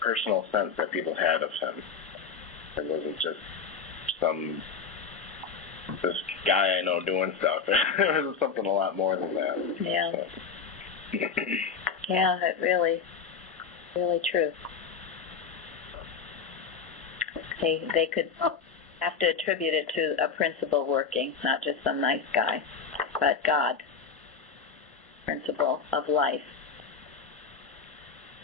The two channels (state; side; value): quieter; right; 5.9 dB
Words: sense that people had of him. It wasn't just this guy I know doing stuff. It was something a lot more than that. Yeah. Yeah, it really true. They could have to attribute it to a principle working, not just some nice guy, but God, principle of life.